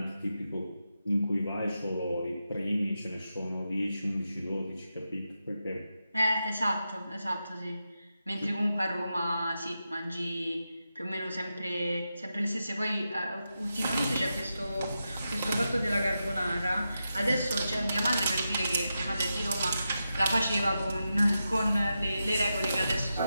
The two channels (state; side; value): inverted; both; correlation -0.89